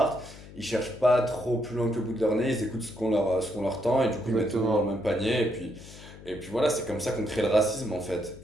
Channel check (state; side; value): noise; left; hum, 17 dB below the sound